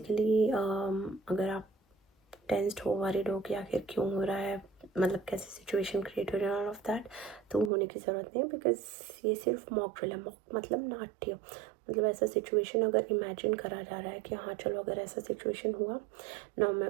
अगर आप टेंस्ड हो, वरीड हो कि आखिर क्यों हो रहा है, मतलब कैसे सिचुएशन क्रिएट हो रही है, ऑल ऑफ दैट, तो होने की ज़रूरत नहीं है बिकॉज ये सिर्फ मॉक ड्रिल है। मॉक मतलब नाट्य, मतलब ऐसा सिचुएशन अगर इमेजिन करा जा रहा है कि हाँ चलो अगर ऐसा सिचुएशन हुआ ना। मैं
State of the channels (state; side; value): drops out; left; at 7.7 s